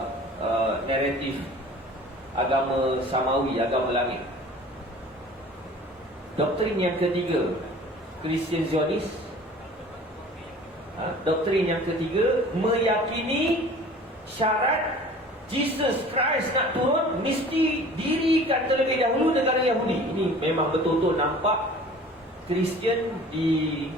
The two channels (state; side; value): normal; both; correlation 0.45